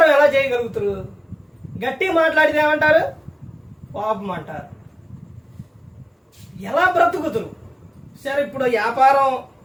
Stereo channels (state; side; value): identical; both; correlation 1.00